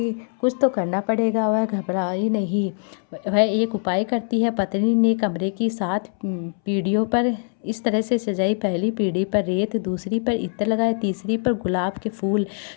कुछ तो करना पड़ेगा। वह घबराई नहीं, वह एक उपाय करती है। पत्नी ने कमरे की 7 पीढ़ियों पर इस तरह से सजाई। पहली पीढ़ी पर रेत, दूसरी पर इत्र लगाए, तीसरी पर गुलाब के फूल,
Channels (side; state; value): right; silent; 64 dB below the other